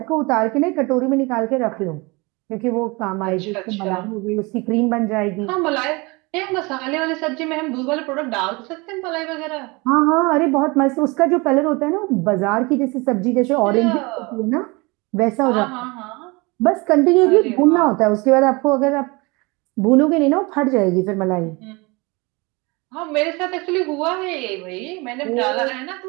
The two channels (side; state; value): left; quieter; 26.2 dB